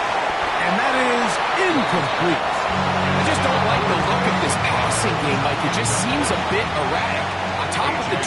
And that is incomplete. I just don't like the look of this passing game, Mike. It just seems a bit erratic. On top of the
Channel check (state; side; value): identical; both; correlation 1.00